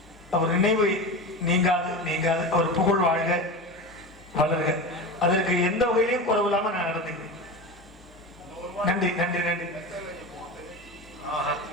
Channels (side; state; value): both; normal; correlation 0.26